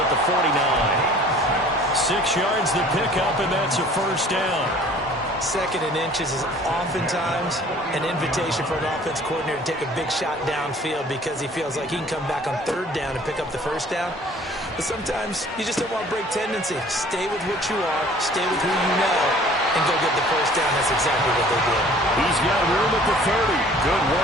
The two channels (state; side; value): normal; both; correlation 0.51